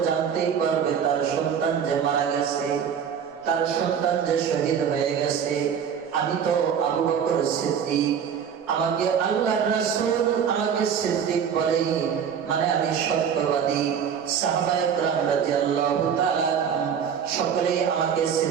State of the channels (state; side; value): quieter; left; 7.7 dB